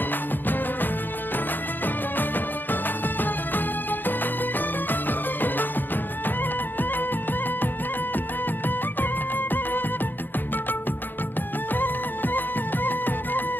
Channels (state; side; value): late; right; 0.092 ms